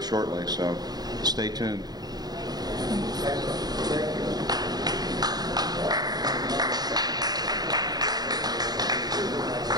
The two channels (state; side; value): late; left; 0.19 ms